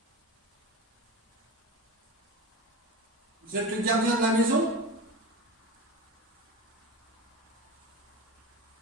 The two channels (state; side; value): normal; both; correlation 0.27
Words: vous êtes le gardien de la maison.